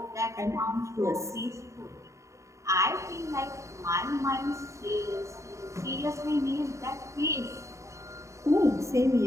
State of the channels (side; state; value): left; late; 0.14 ms